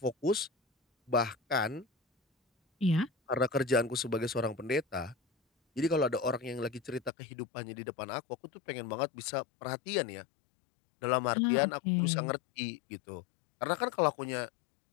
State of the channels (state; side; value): drops out; right; at 7.1 s